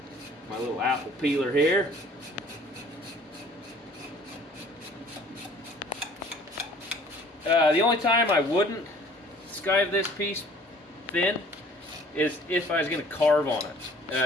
My little apple peeler here. The only time I wouldn't skive this piece thin is if I was going to carve on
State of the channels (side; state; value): both; normal; correlation 0.53